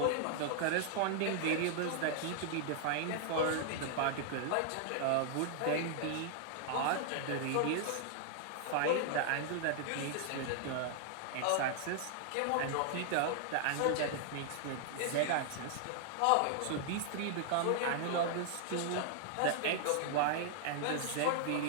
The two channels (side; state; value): both; different; correlation 0.00